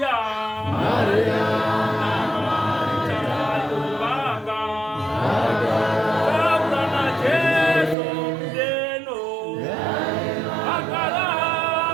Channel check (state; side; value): drops out; left; at 8.0 s